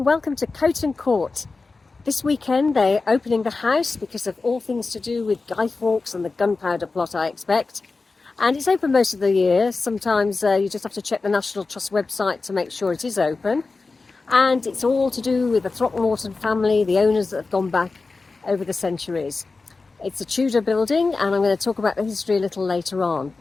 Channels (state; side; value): quieter; right; 3.9 dB